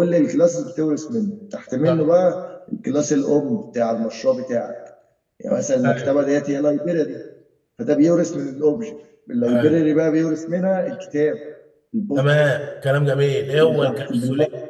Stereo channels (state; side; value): identical; both; correlation 1.00